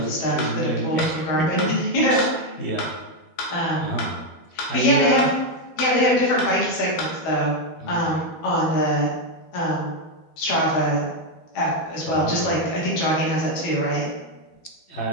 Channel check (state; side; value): late; right; 12 ms